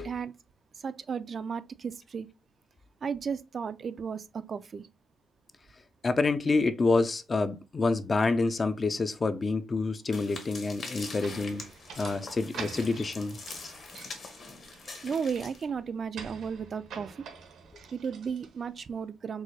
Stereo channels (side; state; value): both; normal; correlation 0.88